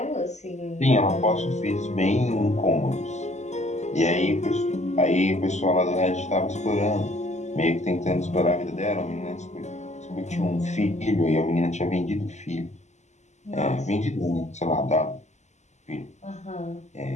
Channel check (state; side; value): late; right; 0.33 ms